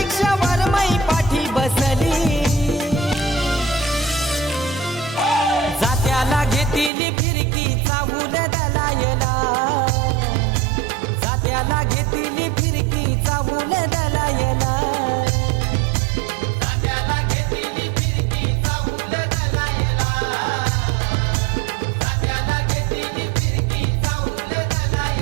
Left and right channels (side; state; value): left; drops out; at 6.9 s